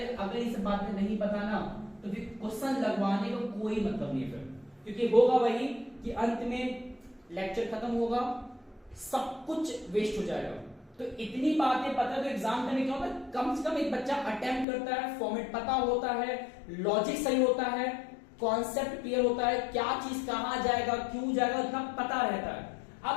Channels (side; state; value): right; drops out; at 14.7 s